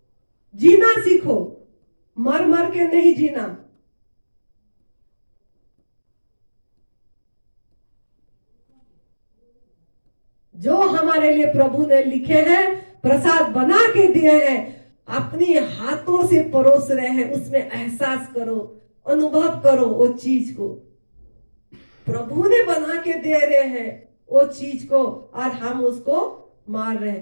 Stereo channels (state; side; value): inverted; both; correlation -1.00